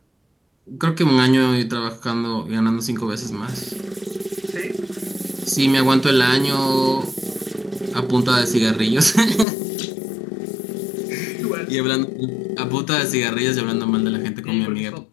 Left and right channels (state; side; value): drops out; right; at 9.5 s